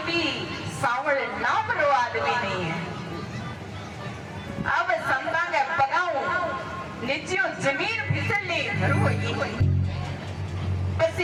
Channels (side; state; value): both; identical; correlation 1.00